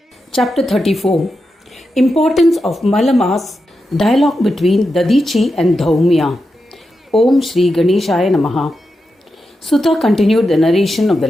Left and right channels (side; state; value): both; normal; correlation 0.88